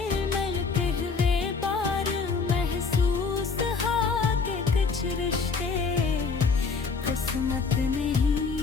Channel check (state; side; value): quieter; right; 4.9 dB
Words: मिलते हुए बार महसूस हा के कुछ रिश्ते किस्मत